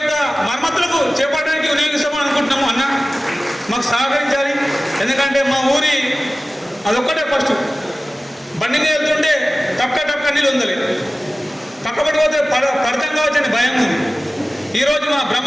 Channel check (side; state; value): both; normal; correlation 0.97